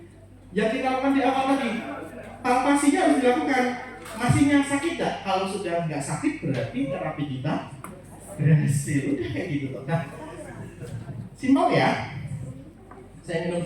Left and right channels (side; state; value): both; identical; correlation 1.00